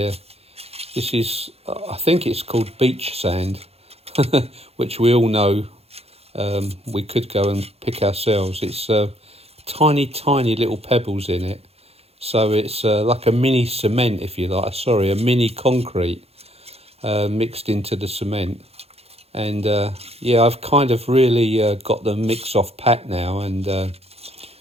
is, I think it's called beach sand, which we all know we could go and pick ourselves. It's tiny little pebbles in it, so it's like a mini cement, if you like, a mini concrete mixed into the cement. And yeah, I've kind of really got the mix off pat now, and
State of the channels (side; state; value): left; late; 0.29 ms